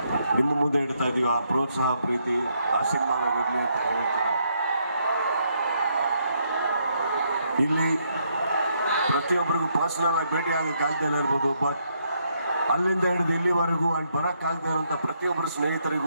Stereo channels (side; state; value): both; inverted; correlation -0.74